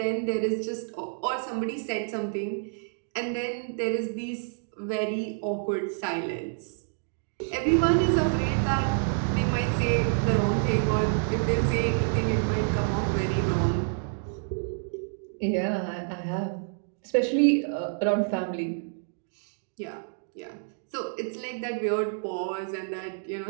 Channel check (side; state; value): left; silent; digital silence